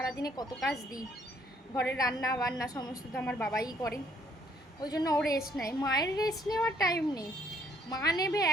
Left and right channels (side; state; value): both; normal; correlation 0.67